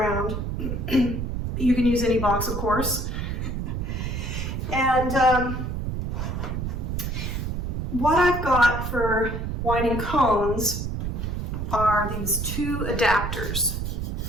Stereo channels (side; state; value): right; noise; rumble, 3 dB below the sound